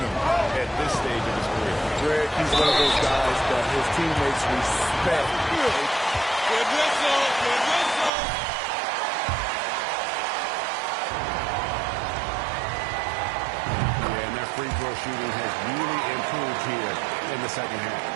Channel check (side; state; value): left; drops out; at 8.1 s